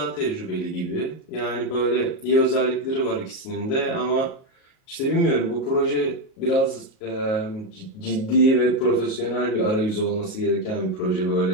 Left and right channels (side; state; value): right; late; 37 ms